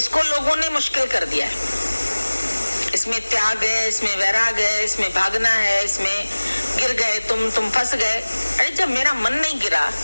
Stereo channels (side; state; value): both; inverted; correlation -1.00